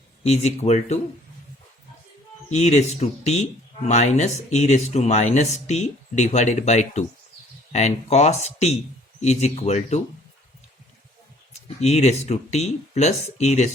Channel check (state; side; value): normal; both; correlation 0.57